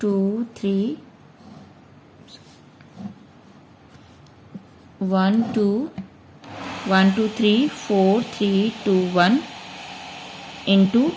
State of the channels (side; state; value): both; identical; correlation 1.00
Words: 3 1 2 3 4 3 2 1 into